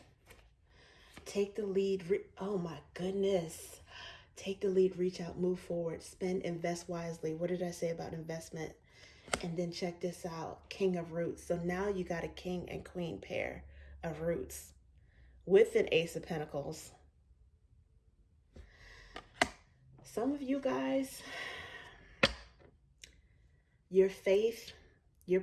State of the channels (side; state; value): both; identical; correlation 1.00